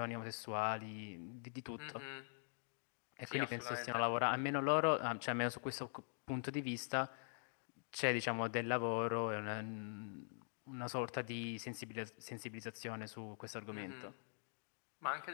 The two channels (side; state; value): right; silent; digital silence